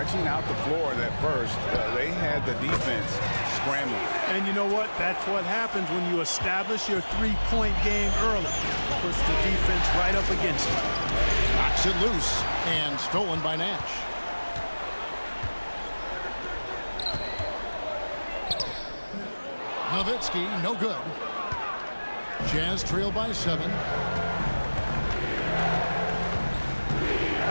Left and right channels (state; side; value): inverted; both; correlation -1.00